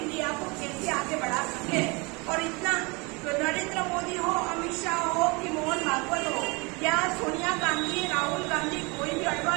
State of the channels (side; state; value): left; quieter; 27.9 dB